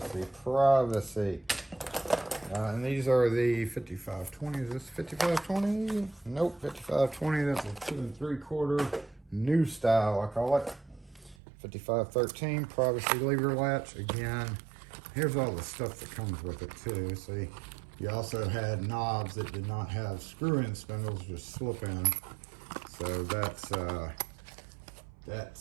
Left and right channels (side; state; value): left; drops out; at 11.4 s